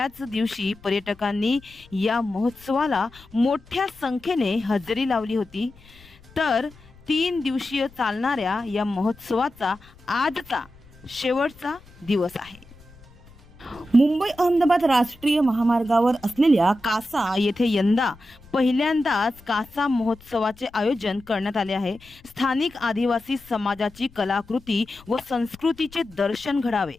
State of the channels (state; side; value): noise; left; rumble, 25 dB below the sound